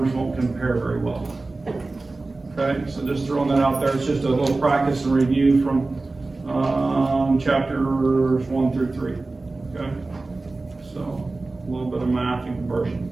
won't compare very well. Okay, so just throwing that out there. It's just a little practice and review from chapters 1 through 3. Okay, so a little bit of math and conversion.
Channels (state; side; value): quieter; left; 3.4 dB